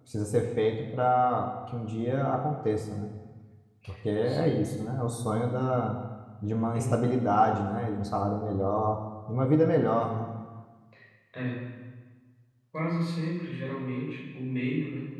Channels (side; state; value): both; identical; correlation 1.00